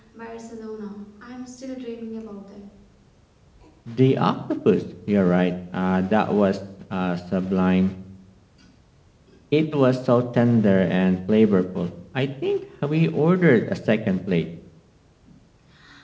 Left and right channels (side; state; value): both; identical; correlation 1.00